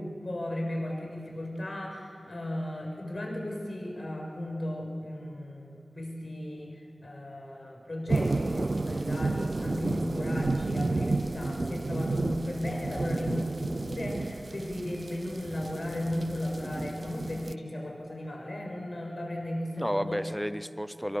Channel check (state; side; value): normal; both; correlation 0.96